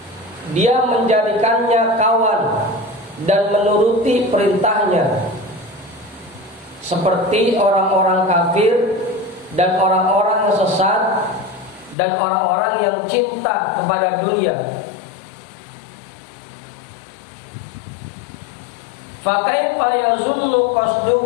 dia menjadikannya kawan dan menuruti perintahnya, seperti orang-orang kafir dan orang-orang yang sesat dan orang-orang yang cinta kepada dunia. Fa kaifa yazunnu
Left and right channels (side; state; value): right; drops out; at 12.0 s